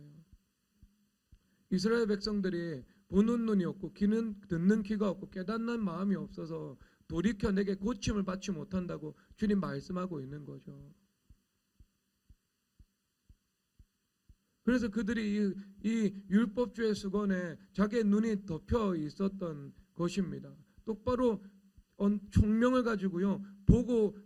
이스라엘 백성들이 보는 눈이 없고 듣는 귀가 없고 깨닫는 마음이 없어서 돌이켜 내게 고침을 받지 못한다고 주님 말씀하고 있는 거죠. 그래서 그들이 이 율법주의 수건에 자기의 눈이 덮여 있었던 것입니다. 똑바로 총명을 가지고요 보고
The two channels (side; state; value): both; identical; correlation 1.00